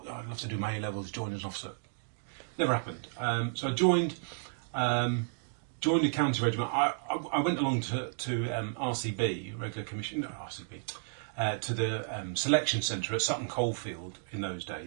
I'd love to do my A levels, join as an officer. Never happened. So I joined the county regiment. I went along to RCB, regular commission, no, RCB. To the selection centre at Sutton Coldfield in those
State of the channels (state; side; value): silent; left; digital silence